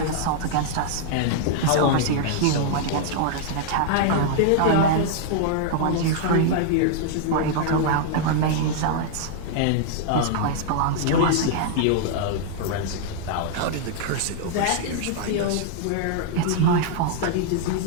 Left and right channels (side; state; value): both; different; correlation -0.01